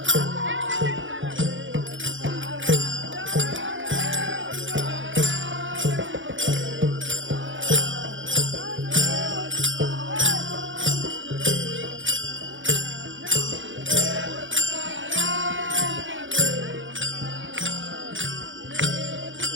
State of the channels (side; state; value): left; late; 0.56 ms